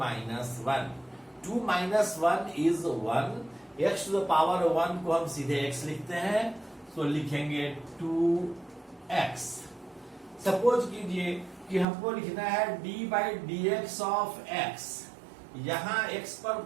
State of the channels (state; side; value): drops out; left; at 11.9 s